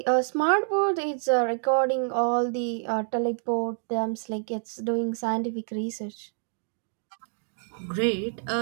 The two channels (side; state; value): left; silent; digital silence